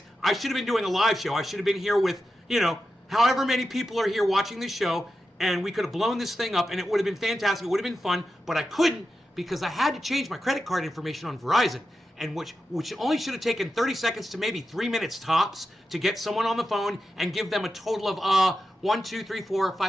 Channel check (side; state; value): both; normal; correlation 0.90